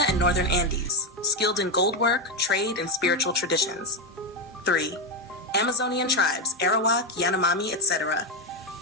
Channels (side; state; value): both; normal; correlation 0.08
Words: and northern Andes, skilled in gold work, trade, and spiritual traditions. 3. Amazonian tribes, Arawak, Yanomami, etc.,